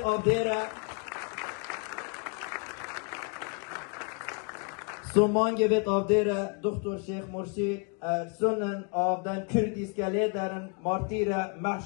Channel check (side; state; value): right; quieter; 35.9 dB